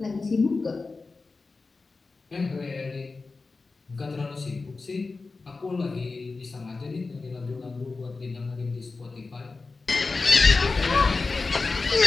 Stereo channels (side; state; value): right; quieter; 3.9 dB